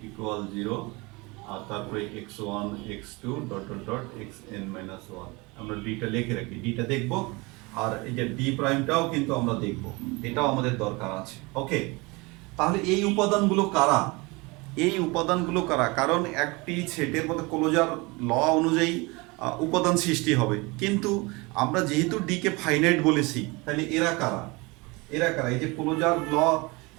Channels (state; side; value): quieter; left; 25.5 dB